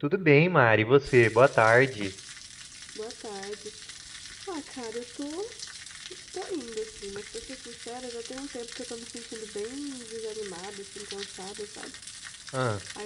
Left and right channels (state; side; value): identical; both; correlation 1.00